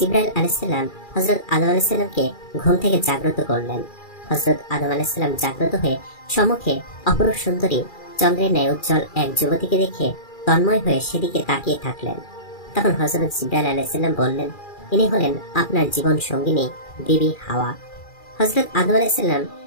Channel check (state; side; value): late; right; 2.4 ms